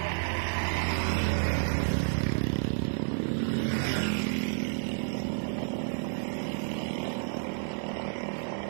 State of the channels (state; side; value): silent; left; digital silence